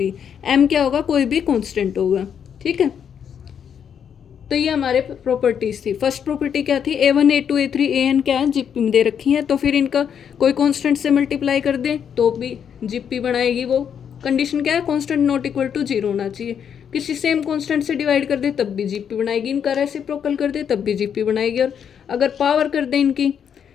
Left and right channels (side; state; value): right; quieter; 8.0 dB